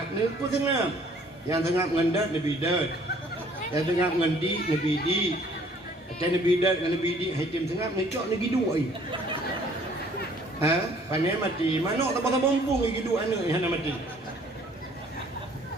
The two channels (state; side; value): normal; both; correlation 0.58